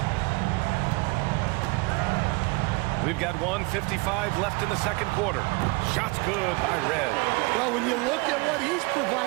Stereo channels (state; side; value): quieter; left; 26.5 dB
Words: We've got 1:55 left in the second quarter. Shot's good by Red. Well, when you look at what he's